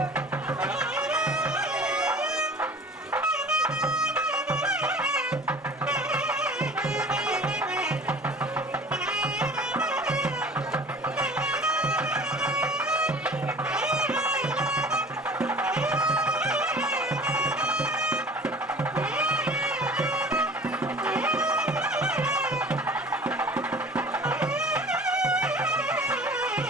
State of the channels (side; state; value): both; normal; correlation 0.45